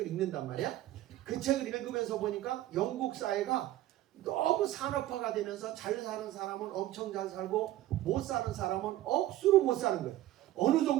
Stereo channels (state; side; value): quieter; left; 14.7 dB